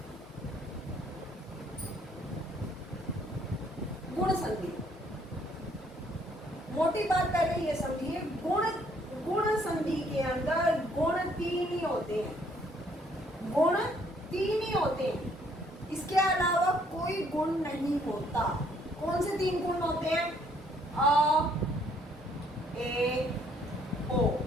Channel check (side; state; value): both; normal; correlation 0.65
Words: गुण संधि, मोटी बात पहले ये समझिए, गुण संधि के अंदर गुण तीन ही होते हैं। गुण तीन ही होते हैं, इसके अलावा कोई गुण नहीं होता। कौन से तीन गुण होते हैं? अ, ए, ओ।